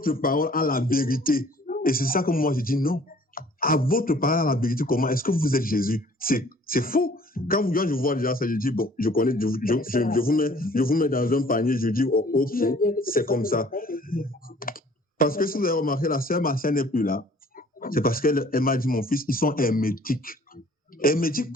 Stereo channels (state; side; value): normal; both; correlation 0.55